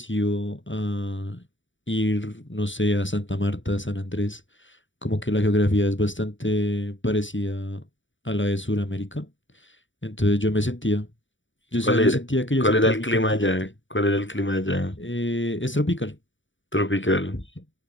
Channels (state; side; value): late; right; 0.55 ms